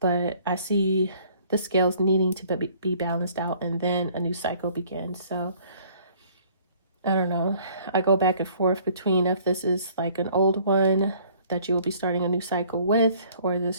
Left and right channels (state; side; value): inverted; both; correlation -0.57